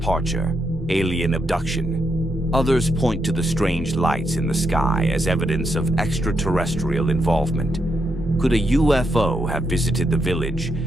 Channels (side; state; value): both; normal; correlation 0.81